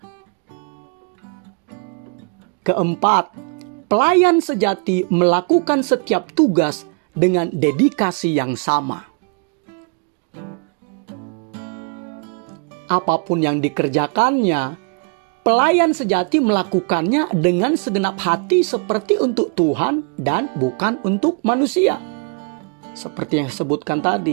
Keempat, pelayan sejati melakukan setiap tugas dengan dedikasi yang sama. Apapun yang dikerjakannya, pelayan sejati melakukannya dengan segenap hati seperti untuk Tuhan dan bukan untuk manusia. Seperti yang disebutkan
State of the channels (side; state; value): left; quieter; 36.4 dB